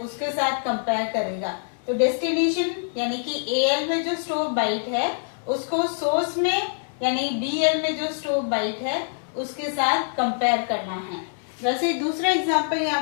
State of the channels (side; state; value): right; silent; 62 dB below the other